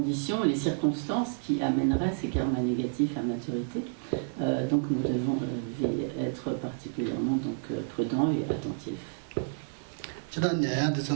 et les circonstances qui amèneraient ces karmas négatifs à maturité. Donc nous devons être particulièrement donc, prudents et attentifs. 这段年的是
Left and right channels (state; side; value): silent; left; 56 dB below the other